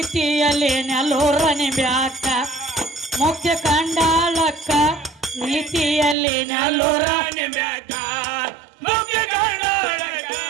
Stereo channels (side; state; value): left; drops out; at 6.2 s